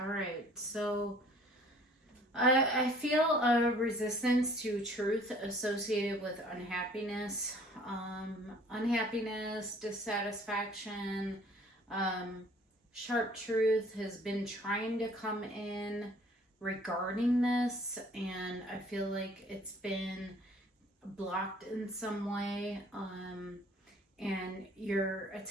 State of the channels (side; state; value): both; normal; correlation 0.55